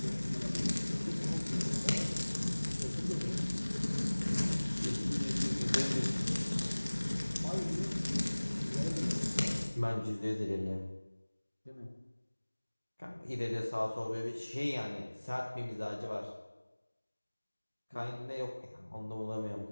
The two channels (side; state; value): both; inverted; correlation -1.00